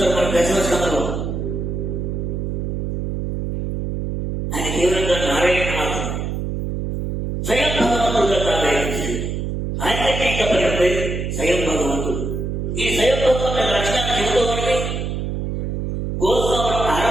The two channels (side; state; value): right; noise; hum, 3 dB below the sound